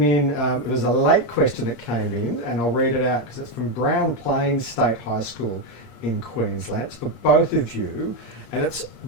in, it was a late question that came in, and I'll read it out because it's from Brown Plains State High School in Queensland. It's for both of you, and it's,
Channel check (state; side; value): late; right; 8.5 ms